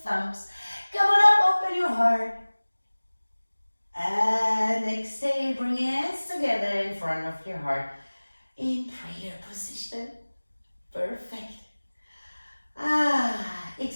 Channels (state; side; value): inverted; both; correlation -1.00